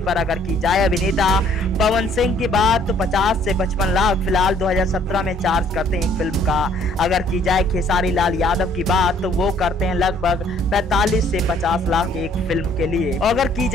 पर अगर की जाए अभिनेता पवन सिंह की बात तो 50 से 55 लाख फिलहाल 2017 में चार्ज करते हैं एक फिल्म का। अगर की जाए खेसारी लाल यादव की बात तो वो करते हैं लगभग 45 से 50 लाख एक फिल्म के लिए। और अगर की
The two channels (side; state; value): both; normal; correlation 0.60